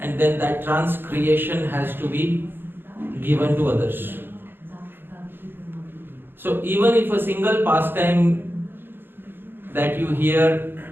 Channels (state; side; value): late; left; 0.10 ms